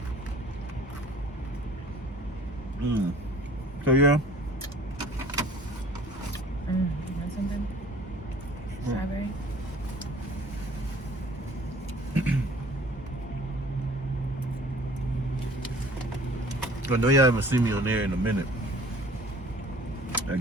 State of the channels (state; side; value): normal; both; correlation 0.50